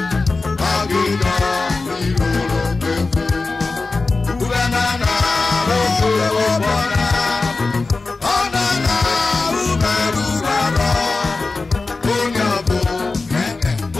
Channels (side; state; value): right; quieter; 3.8 dB